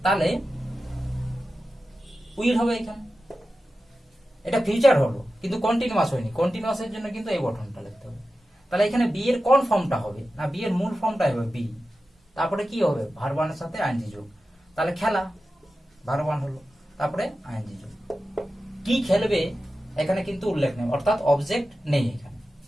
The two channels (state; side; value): normal; both; correlation 0.93